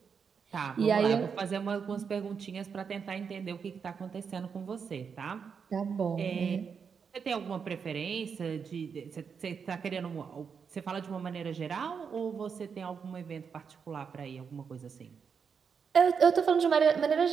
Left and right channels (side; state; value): left; quieter; 6.3 dB